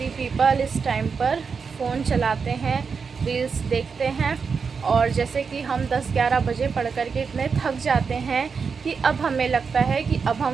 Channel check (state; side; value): quieter; left; 5.6 dB